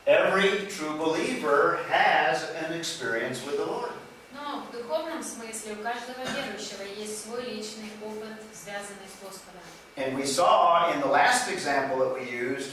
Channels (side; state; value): both; identical; correlation 1.00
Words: every true believer has an experience with the Lord. Но в духовном смысле у каждого верующего есть свой личный опыт, связанный с Господом. And we saw in the last example that we